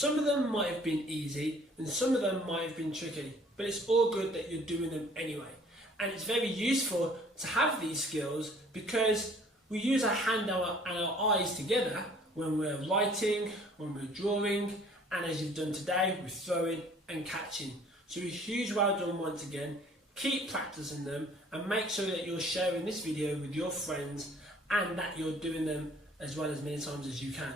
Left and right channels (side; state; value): both; normal; correlation 0.55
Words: of them might have been easy and some of them might have been tricky, but it's all good that you're doing them anyway. And it's very useful to have these skills because we use our hand and our eyes together when we're writing, when we're drawing, and as you've done today, we're throwing and catching. So a huge well done once again. Keep practicing them and make sure that you're sharing this video with your friends and that you're doing them as well as many times as you can.